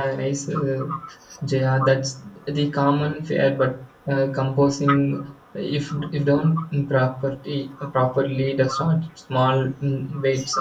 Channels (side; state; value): both; identical; correlation 1.00